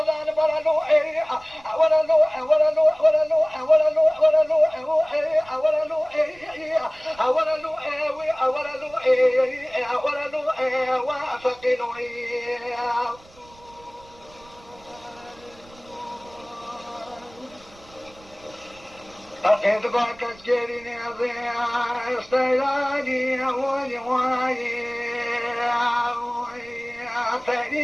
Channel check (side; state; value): right; noise; rumble, 25 dB below the sound